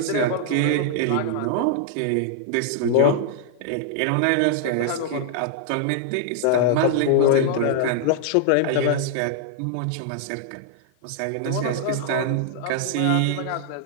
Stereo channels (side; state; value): both; different; correlation -0.01